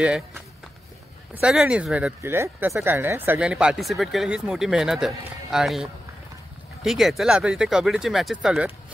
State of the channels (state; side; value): normal; both; correlation 0.91